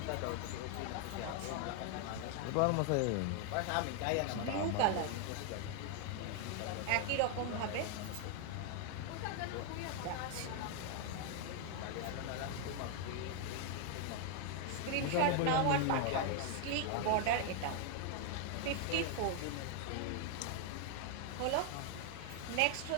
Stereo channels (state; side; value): different; both; correlation 0.00